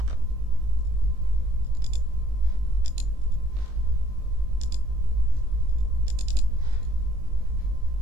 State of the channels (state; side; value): late; left; 20 ms